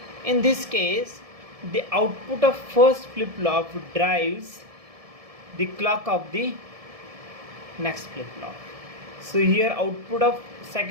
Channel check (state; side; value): late; left; 1.7 ms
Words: In this case, the output of first flip-flop drives the clock of the next flip-flop. So here output of